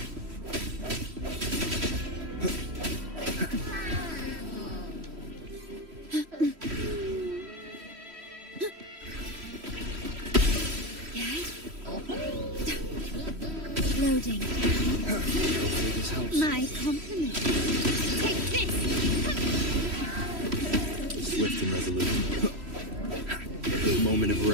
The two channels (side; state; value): left; late; 3.1 ms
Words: Loading. Hopefully this helps. My compliments. Take this. Swift and resolute. Moment of